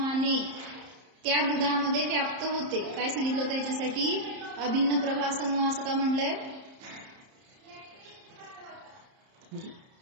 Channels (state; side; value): late; left; 30 ms